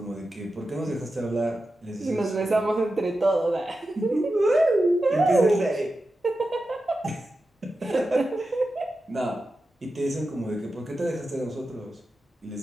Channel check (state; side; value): normal; both; correlation 0.91